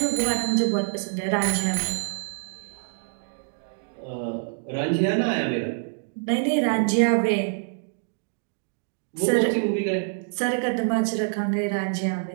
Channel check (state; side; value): silent; left; digital silence